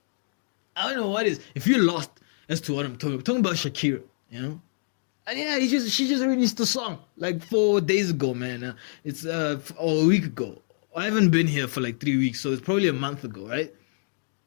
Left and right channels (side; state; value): right; silent; digital silence